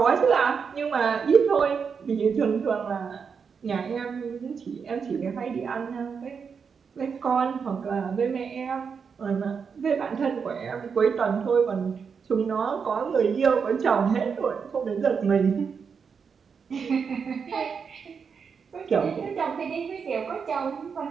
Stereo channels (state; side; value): quieter; left; 6.1 dB